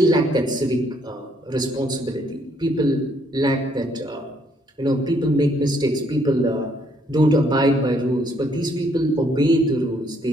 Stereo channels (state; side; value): normal; both; correlation 0.68